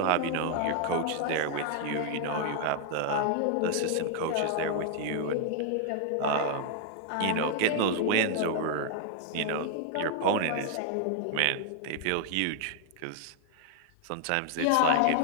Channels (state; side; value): different; both; correlation 0.00